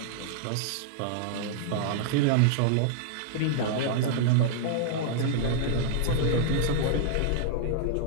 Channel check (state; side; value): different; both; correlation -0.01